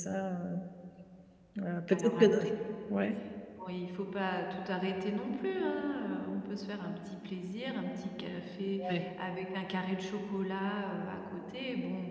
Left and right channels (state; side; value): identical; both; correlation 1.00